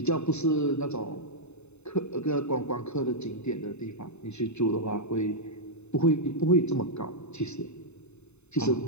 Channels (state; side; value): late; right; 0.81 ms